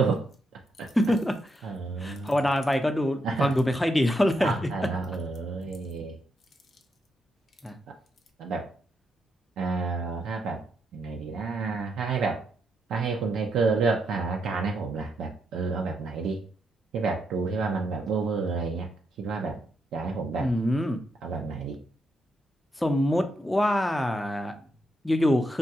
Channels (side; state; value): both; normal; correlation 0.80